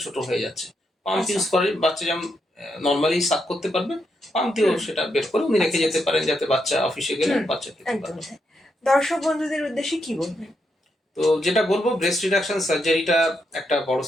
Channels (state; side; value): normal; both; correlation 0.81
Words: ছোট হয়ে যাচ্ছে। পাম্প ইউজ করে বাচ্চা যেমন নর্মালি সাক করতে পারবে, পাম্প দিয়েও সেটা বের করে উনি রেখে যেতে পারেন, যাতে বাচ্চা অফিসে গেলে বাচ্চা খেতে পারে। দর্শক বন্ধুদের উদ্দেশ্যে কি বলবেন? তো যেটা বলবো, ব্রেস্ট রিডাকশন সার্জারিটা একটা বড়